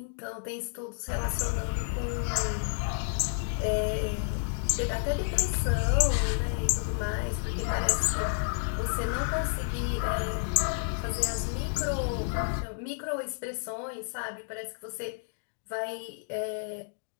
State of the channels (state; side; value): silent; right; digital silence